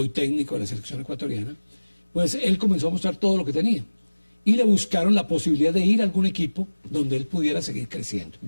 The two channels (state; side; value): inverted; both; correlation -1.00